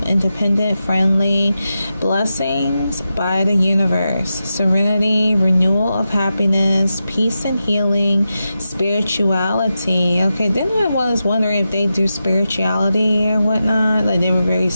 independent, friendly, blessings by the universe, serenity, renewal of happiness, peace and healing, spirituality. Okay, then I was wondering if they do spirituality or whatnot, like they were very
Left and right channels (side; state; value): both; inverted; correlation -0.90